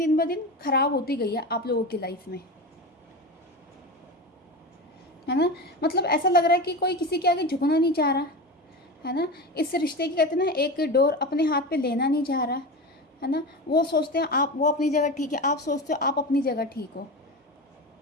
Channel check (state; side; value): normal; both; correlation 0.25